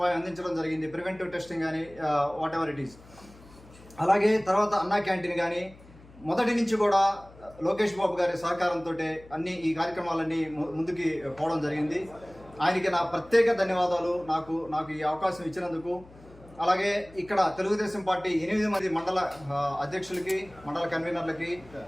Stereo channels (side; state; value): left; noise; hum, 22 dB below the sound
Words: అందించడం జరిగింది. ప్రివెంటివ్ టెస్టింగ్ కానీ వాట్ ఎవర్ ఇట్ ఈస్. అలాగే తర్వాత అన్నా క్యాంటీన్ కానీ మొదటి నుంచి కూడా లోకేష్ బాబు గారి సహకారంతో అన్ని ఈ కార్యక్రమాలన్నీ ముందుకి పోవడం జరిగింది. ఆయనకి నా ప్రత్యేక ధన్యవాదాలు నాకు ఈ అవకాశం ఇచ్చినందుకు. అలాగే ఇక్కడ తెలుగుదేశం పార్టీ 8 మంది మండల అధ్యక్షులకి, మండల కన్వీనర్లకి,